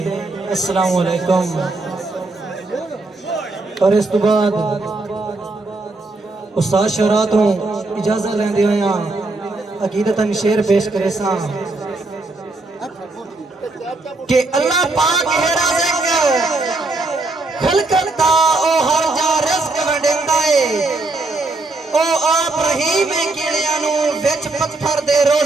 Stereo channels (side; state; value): left; quieter; 3.3 dB